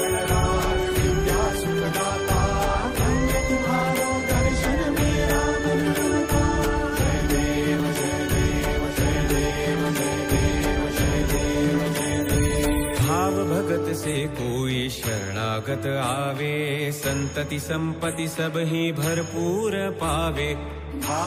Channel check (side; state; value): both; identical; correlation 1.00